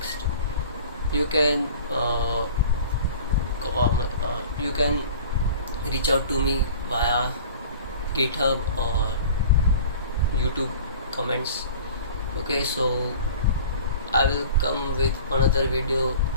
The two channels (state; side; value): inverted; both; correlation -0.42